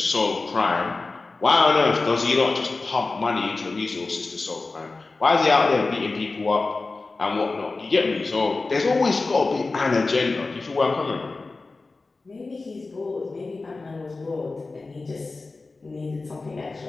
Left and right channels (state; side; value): quieter; right; 3.6 dB